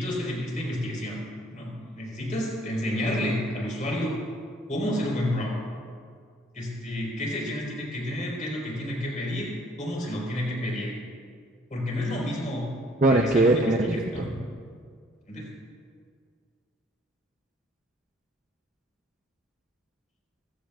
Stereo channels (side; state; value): both; normal; correlation 0.61